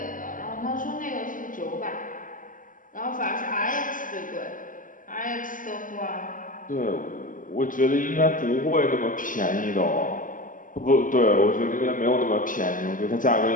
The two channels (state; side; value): late; right; 0.39 ms